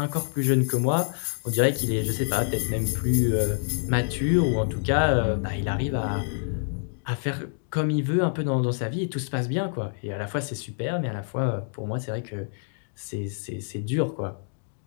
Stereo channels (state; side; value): silent; right; digital silence